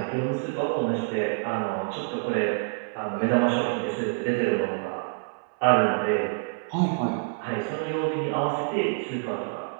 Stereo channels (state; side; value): silent; left; 60 dB below the other